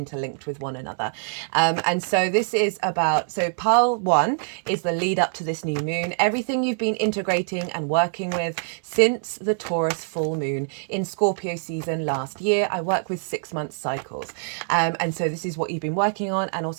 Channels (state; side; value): silent; left; digital silence